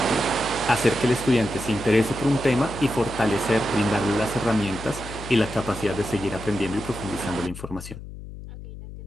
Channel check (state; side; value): noise; left; hum, 12 dB below the sound